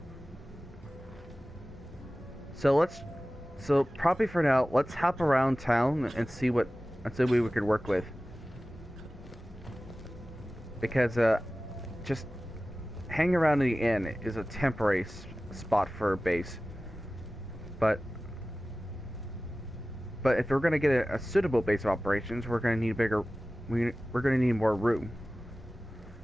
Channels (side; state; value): both; normal; correlation 0.96